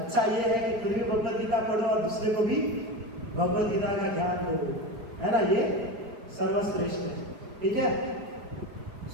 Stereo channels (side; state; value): left; late; 4.4 ms